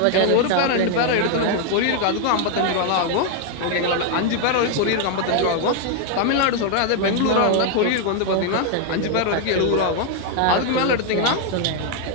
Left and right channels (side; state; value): both; different; correlation 0.00